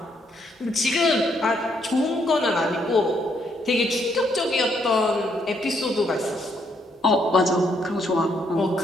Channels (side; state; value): both; normal; correlation 0.72